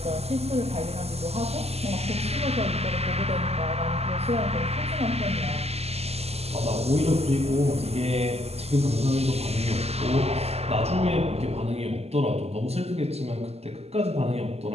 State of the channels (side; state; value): left; late; 0.30 ms